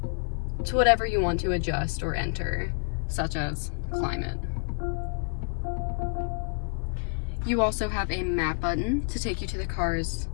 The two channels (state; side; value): silent; right; digital silence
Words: to whatever you want to adjust or enter, such as climate. You also have a map button to take you to the car's